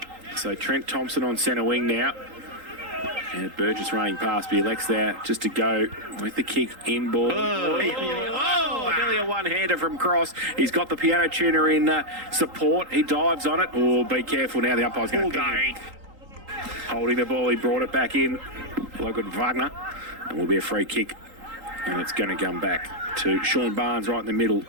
So Trent Thompson on centre wing now. And Burgess running past, but he elects there just to go with the kick in ball. Nearly a one-hander from Cross. He's got the piano tuner in support. He dives on it. Oh, be careful now. The umpire's going to pick him. Holding the ball, he brought it back in. Logan Wagner. And will be a free kick. And it's going to come back to Sean Barnes right in the middle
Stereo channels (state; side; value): late; left; 3.8 ms